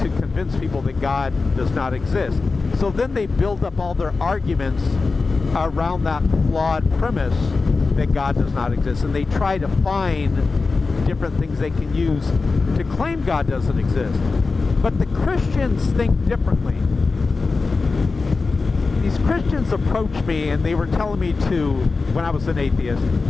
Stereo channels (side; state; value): right; quieter; 4.1 dB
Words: convince people that God does not exist. So then they build up all their arguments around that flawed premise that God does not exist. And they try to find different things they can use to claim God doesn't exist. But the Christians think differently. These Christians approached me and they were telling me to, when I was an atheist,